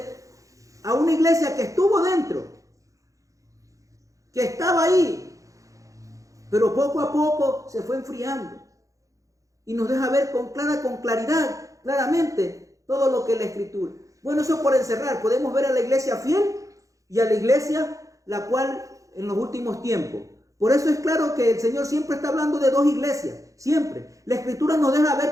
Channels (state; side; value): late; left; 0.16 ms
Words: a una iglesia que estuvo dentro, que estaba ahí, pero poco a poco se fue enfriando. Y nos deja ver con claridad, claramente, todo lo que es la Escritura. Bueno, eso por encerrar, podemos ver a la iglesia fiel y a la iglesia la cual en los últimos tiempos. Por eso es claro que el Señor siempre está hablando de dos iglesias, siempre. La Escritura nos deja ver